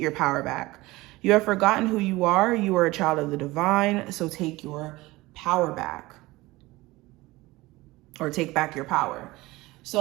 power back. You have forgotten who you are. You are a child of the divine, so take your power back, or take back your power.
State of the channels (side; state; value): left; quieter; 20.1 dB